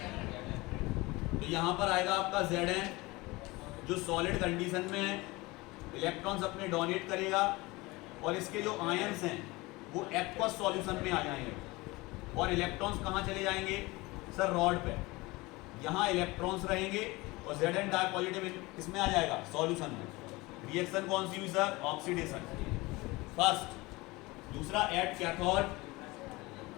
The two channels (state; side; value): quieter; right; 22.4 dB